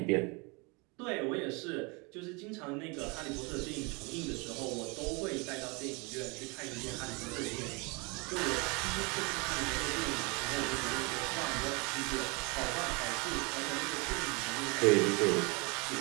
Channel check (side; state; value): left; quieter; 29.5 dB